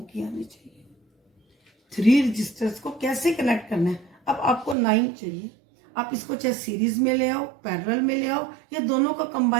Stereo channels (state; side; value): drops out; left; at 4.8 s